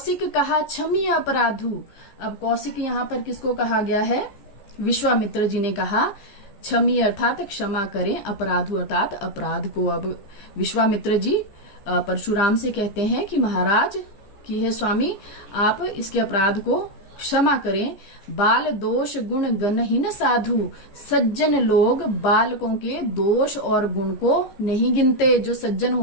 कहा क्षमी अपराधु। अब कौशिक यहाँ पर किसको कहा गया है? विश्वामित्र जी ने कहा क्षमी अर्थात क्षमा करें, अपराधु अर्थात अपराध को। अब विश्वामित्र जी परशुराम से कहते हैं कि महाराज कि हे स्वामी आप इसके अपराध को क्षमा करें। बाल दोष गुण गणहीन साधु, सज्जन लोग बालकों के दोष और गुण को नहीं गिनते। जो सज्जन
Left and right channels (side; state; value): right; late; 14 ms